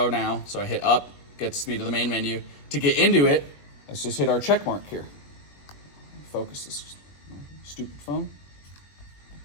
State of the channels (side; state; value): right; late; 21 ms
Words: now. So I hit up, gets me to the main menu. To get into it, let's just hit our check mark here. Focus this stupid phone.